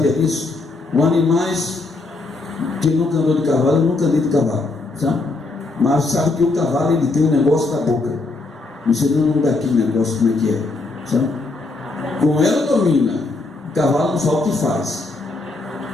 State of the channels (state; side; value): quieter; right; 3.4 dB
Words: disso? Os animais, quem nunca andou de cavalo, eu nunca andei de cavalo, sabe? Mas sabe que o cavalo ele tem um negócio na boca. Você não dá aquele negócio como é que é, sabe? Com ela domina. O cavalo não sabe o que faz.